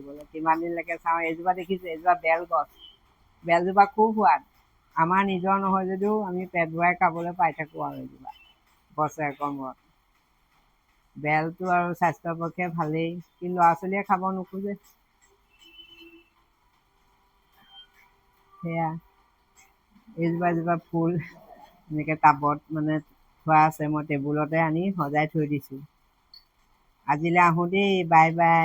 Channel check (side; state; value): both; identical; correlation 1.00